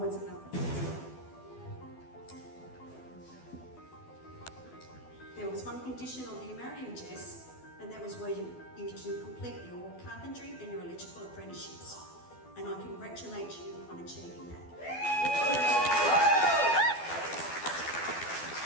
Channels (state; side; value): late; right; 12 ms